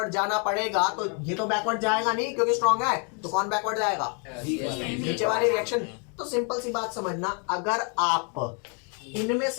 जाना पड़ेगा तो ये तो बैकवर्ड जाएगा नहीं क्योंकि स्ट्रॉन्ग है, तो कौन बैकवर्ड जाएगा, नीचे वाली रिएक्शन। तो सिंपल सी बात समझना, अगर आप इनमें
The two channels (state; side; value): quieter; right; 38.1 dB